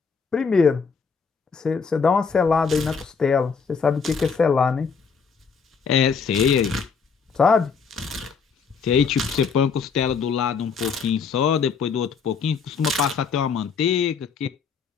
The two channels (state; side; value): quieter; right; 5.7 dB